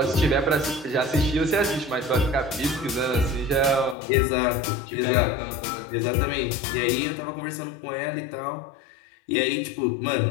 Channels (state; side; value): drops out; right; at 4.0 s